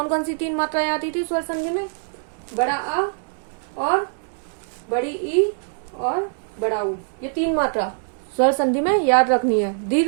कौन सी 3 मात्राएं आती थी स्वर संधि में? बड़ा आ और बड़ी ई और बड़ा ऊ, ये 3 मात्रा स्वर संधि में याद रखनी है,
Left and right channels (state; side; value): silent; left; digital silence